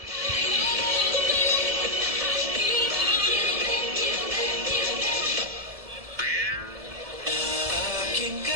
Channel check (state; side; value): late; left; 1.7 ms